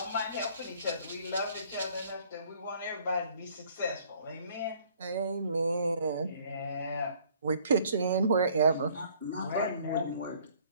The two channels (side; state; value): both; inverted; correlation -0.58